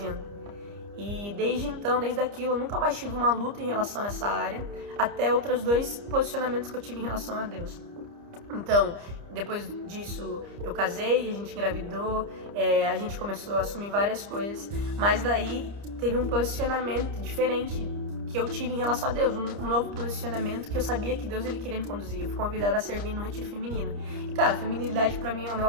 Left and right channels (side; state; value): left; late; 30 ms